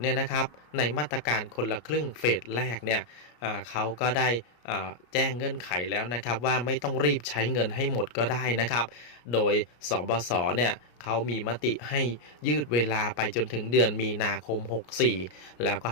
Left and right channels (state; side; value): late; right; 33 ms